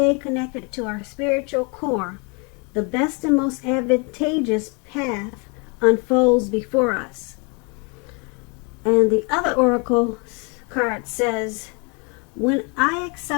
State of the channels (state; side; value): quieter; right; 32.7 dB